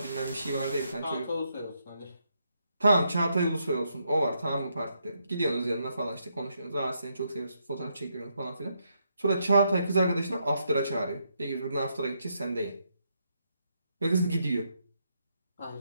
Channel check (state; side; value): inverted; both; correlation -0.78